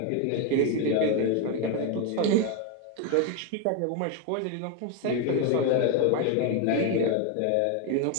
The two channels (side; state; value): both; different; correlation 0.02